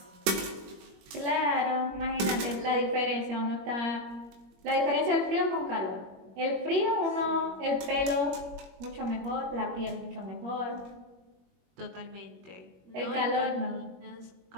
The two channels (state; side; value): late; left; 21 ms